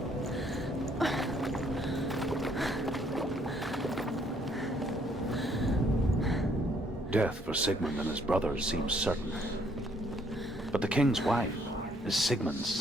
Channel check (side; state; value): both; normal; correlation 0.66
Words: Death for Sigmund and his brothers seems certain. But the king's wife is Sigmund's